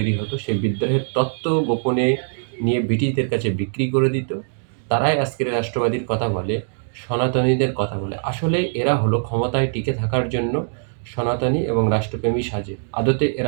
হতো, সেই বিদ্রোহের তত্ত্ব গোপনে নিয়ে ব্রিটিশদের কাছে বিক্রি করে দিত। তারাই আজকের রাষ্ট্রবাদীর কথা বলে, সনাতনীদের কথা বলে। আসলে এরা হলো ক্ষমতায় টিকে থাকার জন্য সনাতনী এবং রাষ্ট্রপ্রেমী সাজে। আদতে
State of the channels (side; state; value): left; silent; digital silence